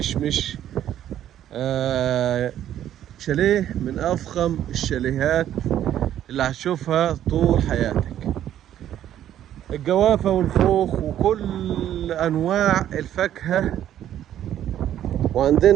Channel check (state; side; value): quieter; left; 11.3 dB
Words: شاليه من افخم الشاليهات اللي هتشوفها طول حياتك، الجوافه والخوخ وكل انواع الفاكهه.